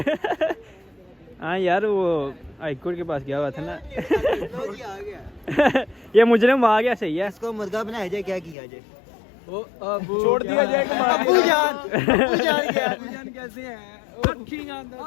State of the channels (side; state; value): right; drops out; at 8.6 s